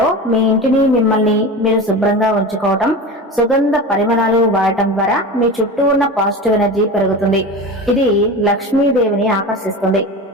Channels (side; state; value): both; normal; correlation 0.28